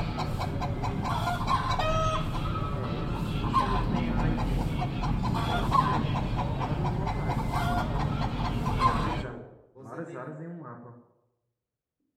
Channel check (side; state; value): both; identical; correlation 1.00